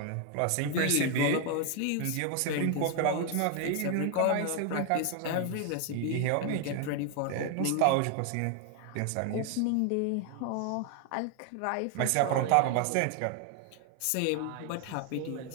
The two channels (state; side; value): different; both; correlation 0.01